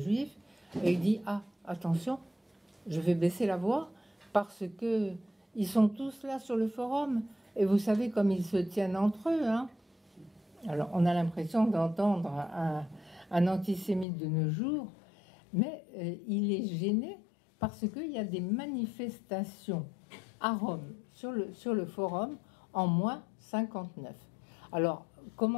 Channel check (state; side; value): drops out; right; at 14.1 s